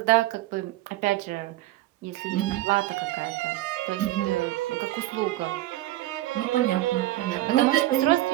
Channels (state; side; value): quieter; left; 16.2 dB